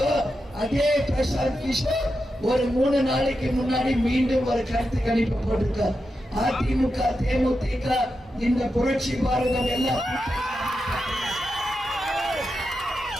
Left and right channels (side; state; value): both; normal; correlation 0.88